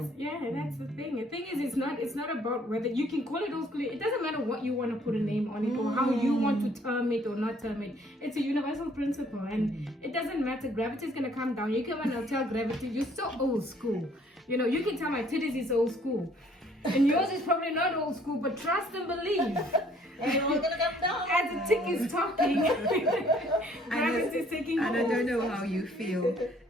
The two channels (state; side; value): normal; both; correlation 0.60